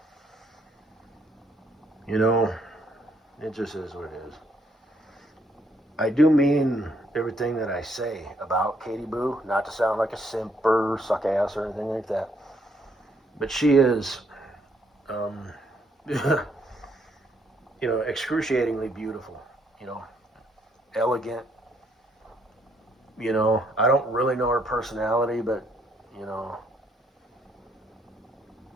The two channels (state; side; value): normal; both; correlation 0.71